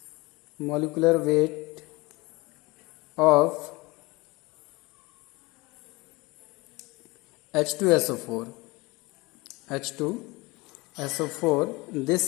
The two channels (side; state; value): right; quieter; 23.4 dB